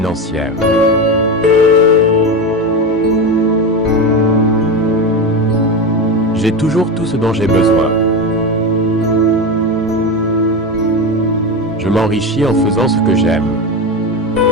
J'ai toujours tout ce dont j'ai besoin. Je m'enrichis en faisant ce que j'aime.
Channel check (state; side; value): normal; both; correlation 0.19